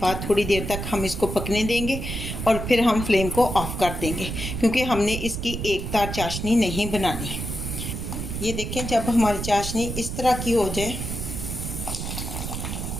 थोड़ी देर तक हम इसको पकने देंगे और फिर हम फ्लेम को ऑफ कर देंगे, क्योंकि हमने इसकी एक तार चाशनी नहीं बनानी। ये देखें, जब हमारी चाशनी इस तरह की हो जाए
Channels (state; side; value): noise; right; rumble, 5 dB below the sound